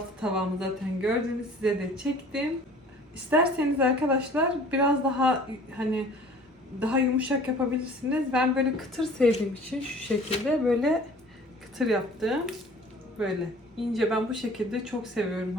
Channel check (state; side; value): normal; both; correlation 0.48